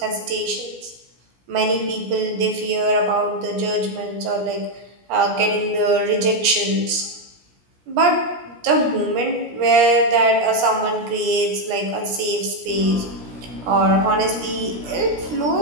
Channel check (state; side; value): late; left; 16 ms